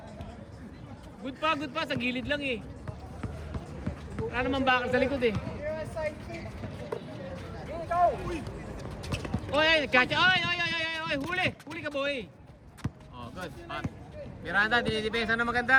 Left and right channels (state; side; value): identical; both; correlation 1.00